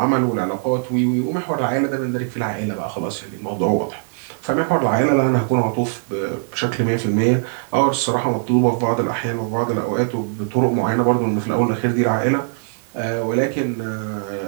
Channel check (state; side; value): silent; left; digital silence